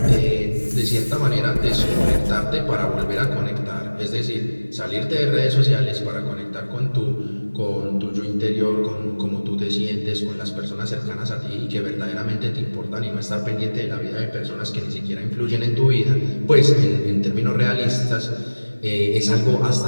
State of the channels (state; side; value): inverted; both; correlation -1.00